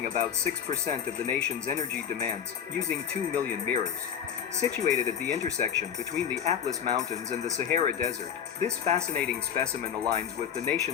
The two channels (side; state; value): right; quieter; 8.4 dB